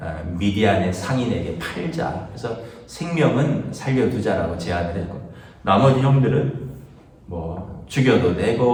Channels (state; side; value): identical; both; correlation 1.00